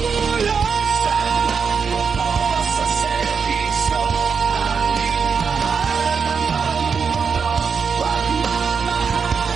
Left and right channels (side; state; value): left; quieter; 5.9 dB